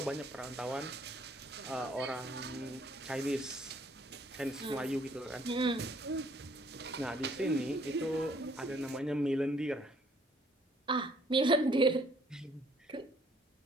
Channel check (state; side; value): normal; both; correlation 0.62